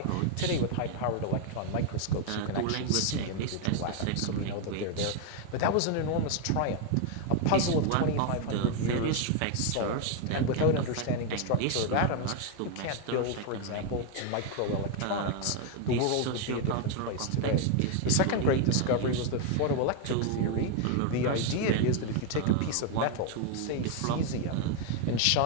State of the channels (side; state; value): both; different; correlation 0.01